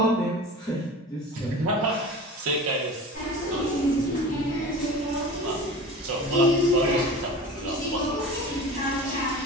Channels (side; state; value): both; normal; correlation 0.36